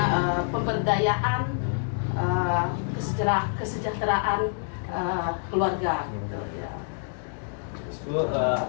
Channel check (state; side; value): silent; right; digital silence